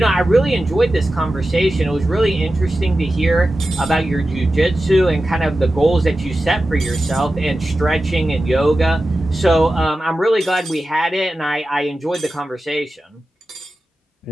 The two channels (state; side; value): normal; both; correlation 0.93